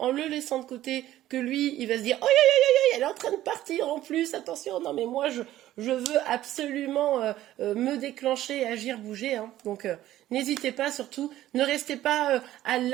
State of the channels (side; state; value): left; quieter; 13.9 dB